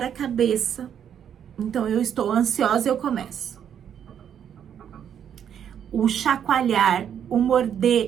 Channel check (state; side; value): quieter; left; 8.9 dB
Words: a cabeça. Então, eu estou ansiosa e eu começo. O chacoalhar, o